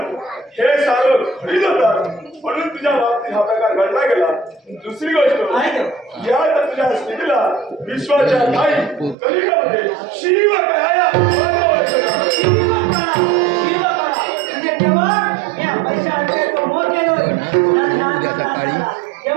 हे सारं खरीद होता म्हणून तुझ्या बाबतीत हा प्रकार घडला गेला. दुसरी गोष्ट या तुझ्या स्थितीला विश्वाच्या काही कलियुगामध्ये शिव कळाया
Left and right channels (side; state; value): left; drops out; at 9.2 s